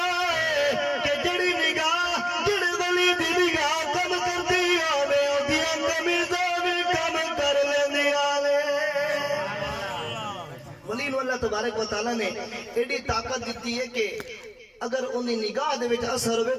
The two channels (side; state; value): both; identical; correlation 1.00